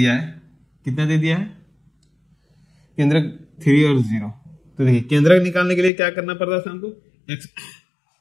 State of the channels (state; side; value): drops out; right; at 5.9 s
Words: है, कितना दे दिया है, केंद्रक 3 और 0। तो देखिए केंद्रक निकालने के लिए क्या करना पड़ता था हमको,